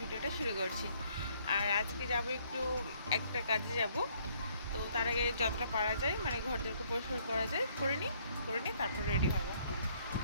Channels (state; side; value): inverted; both; correlation -0.65